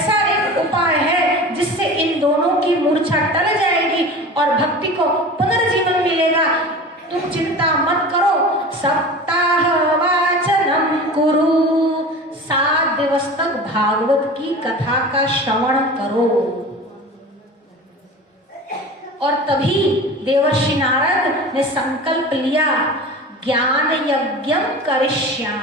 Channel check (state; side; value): normal; both; correlation 0.35